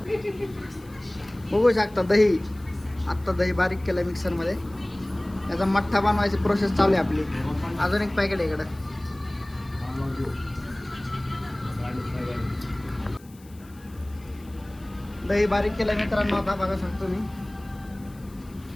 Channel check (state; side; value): noise; left; hiss, 26 dB below the sound